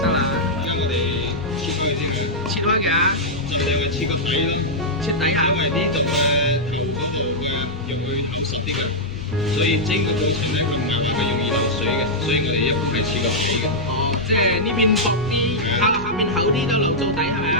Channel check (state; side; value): noise; left; rumble, 15 dB below the sound